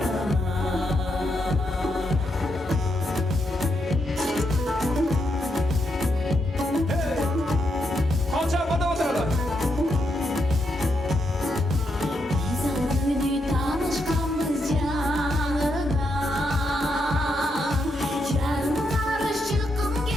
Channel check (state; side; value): normal; both; correlation 0.81